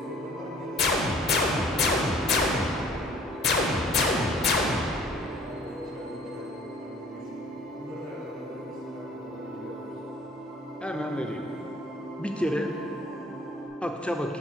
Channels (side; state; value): both; normal; correlation 0.54